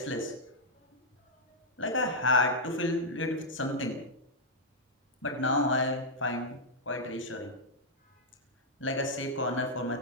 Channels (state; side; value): normal; both; correlation -0.06